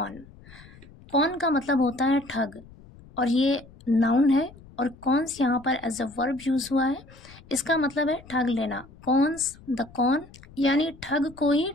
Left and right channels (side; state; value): left; noise; rumble, 22 dB below the sound